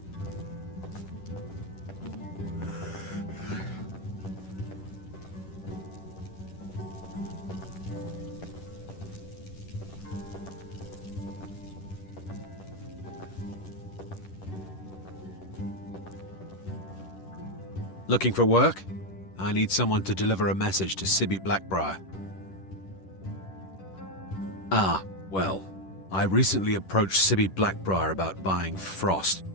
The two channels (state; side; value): late; right; 10 ms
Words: Looking for work? I need someone to deliver a message to Sibby Blackbriar. Ah, well, I recently approached Sibby Blackbriar about buying Frost,